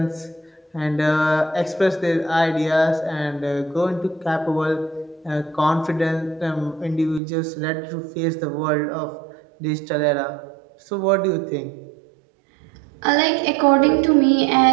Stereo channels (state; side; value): drops out; left; at 7.2 s